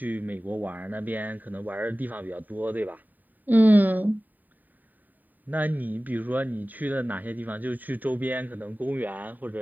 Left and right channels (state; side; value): late; left; 0.086 ms